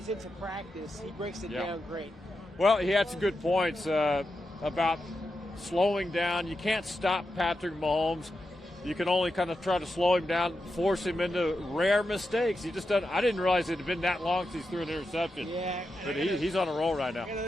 into practice, he breaks it down great. Well, he had some good points about slowing down. You can't stop Patrick Mahomes. You can only kind of try to slow him down, force him into rare mistakes. He just doesn't. I didn't realize it had been that long since he threw an interception. Yeah, but he's on a roll right now.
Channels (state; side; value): normal; both; correlation 0.88